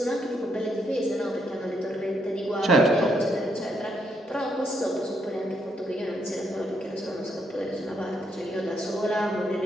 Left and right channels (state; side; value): normal; both; correlation 0.76